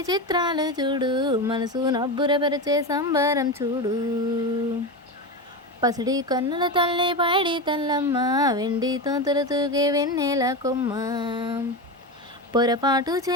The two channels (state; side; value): normal; both; correlation 0.19